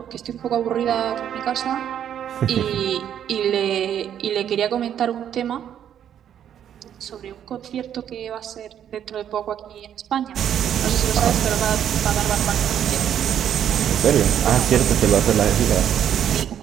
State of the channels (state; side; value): quieter; left; 9.7 dB